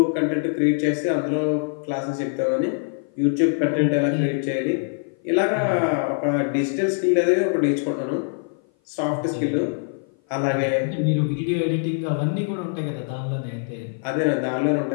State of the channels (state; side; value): silent; right; 56 dB below the other